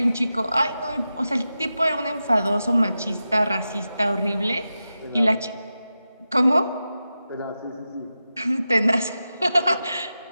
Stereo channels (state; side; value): inverted; both; correlation -0.92